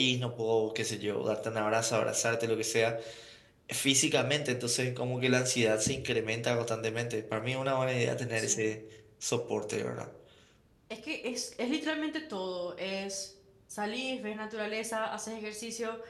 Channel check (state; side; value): identical; both; correlation 1.00